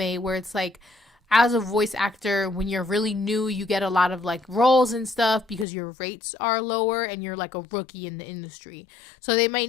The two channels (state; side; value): drops out; right; at 5.7 s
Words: where it's like, as a voice actor, when you're really new, you get a lot of like roles and stuff because your rates are lower and you're like a rookie in the industry. So they